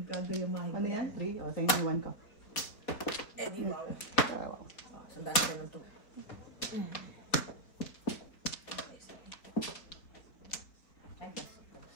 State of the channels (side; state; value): right; late; 4.4 ms